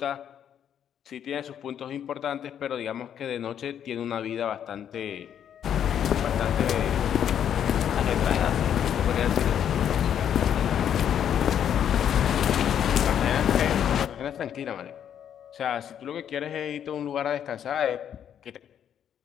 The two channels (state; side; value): quieter; right; 9.3 dB